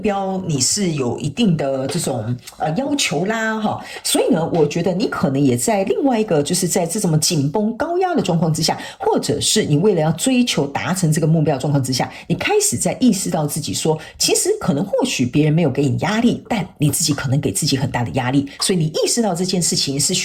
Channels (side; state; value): both; identical; correlation 1.00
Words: 你是有一定的这种要求啦，所以呢，我觉得你可能也在另外一个，就是在这种紧绷高压的状况之下，或者是你为了要追求达成这个目标状况之下，你开始在意识到自己说，其实可能或许别人没有给你压力，但你自己可能给自己很大的压力，所以你意识到这件事情是